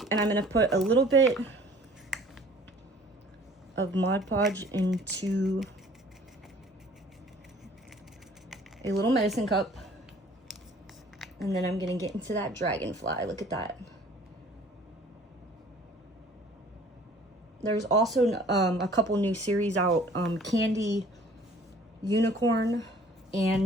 I'm gonna put a little bit of Mod Podge into a little medicine cup, and then I'm gonna get into that dragonfly. Look at that. There's also a couple new series out, Candy Unicorn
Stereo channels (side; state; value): both; normal; correlation 0.52